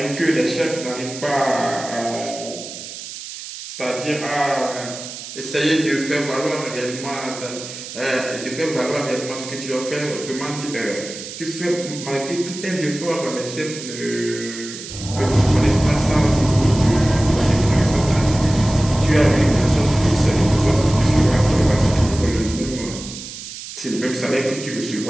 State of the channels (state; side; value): noise; right; hiss, 11 dB below the sound